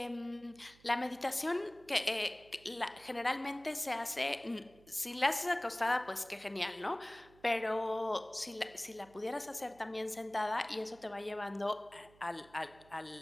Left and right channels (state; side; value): noise; right; hum, 26 dB below the sound